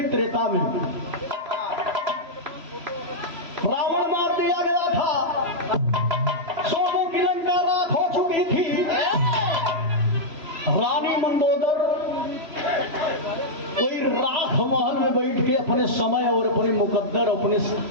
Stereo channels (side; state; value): left; late; 3.0 ms